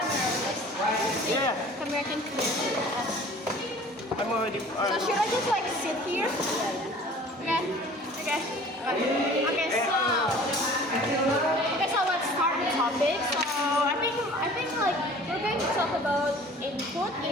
Yeah, Camera can clear. I'm already. So should I just like sit here? Okay. Okay, so let's start the topic. So I think like we're going to talk about input,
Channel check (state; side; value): normal; both; correlation 0.47